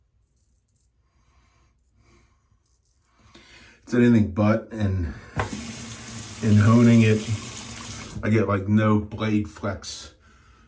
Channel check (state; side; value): identical; both; correlation 1.00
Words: anything but, and in honing it, I get like no blade flex